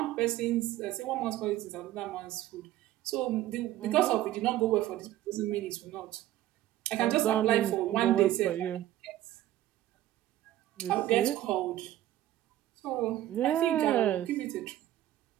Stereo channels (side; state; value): left; quieter; 13.9 dB